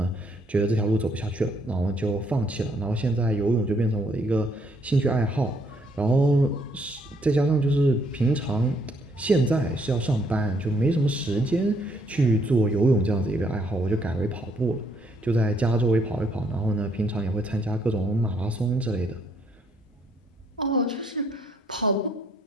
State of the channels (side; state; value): both; normal; correlation 0.69